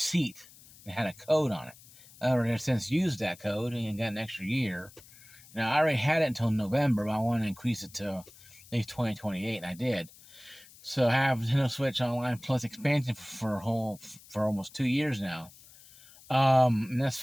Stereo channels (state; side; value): noise; left; hiss, 22 dB below the sound